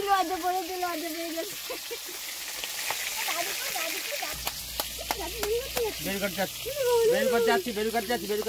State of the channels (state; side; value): identical; both; correlation 1.00